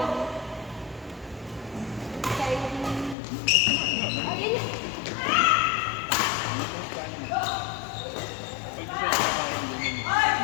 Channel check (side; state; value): right; drops out; at 3.2 s